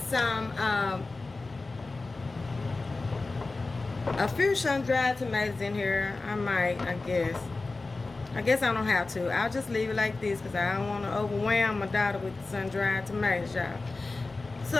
some, a few sun-dried tomatoes in here. I guess. I don't have to. I'll just leave it like this because I don't want to overwhelm my daughter with sun-dried tomatoes, y'all. So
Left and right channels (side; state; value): right; quieter; 3.5 dB